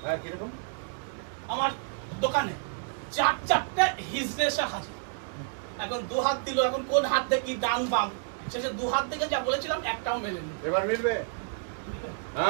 আমার দোকানে চারটে হিজড়ে এসে হাজির। এখন দু হাত দিল, এখন কোন হাত থেকে কি ডান বাম, শেষে দু হাত থেকে যা বলেছিলাম একটাও মেলেনি। এবার মিলবে?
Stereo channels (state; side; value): silent; left; digital silence